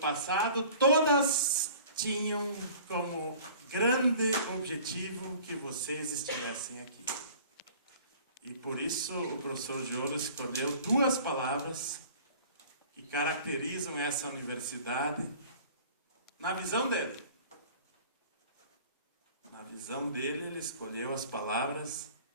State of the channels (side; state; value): both; inverted; correlation -0.47